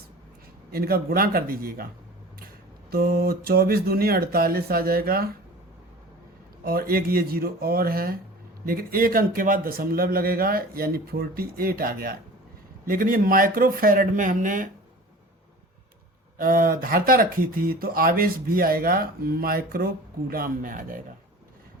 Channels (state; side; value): normal; both; correlation 0.40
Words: इनका गुणा कर दीजिएगा। तो 24 दूनी 48 आ जाएगा, और एक ये जीरो और है, लेकिन एक अंक के बाद दशमलव लगेगा, यानी 48 आ गया। लेकिन ये माइक्रो फैरड में हमने धारता रखी थी, तो आवेश भी आएगा माइक्रो कूलाम में आ जाएगा।